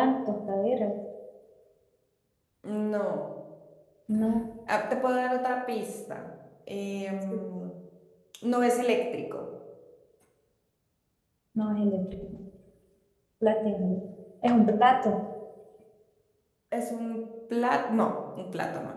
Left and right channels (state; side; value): identical; both; correlation 1.00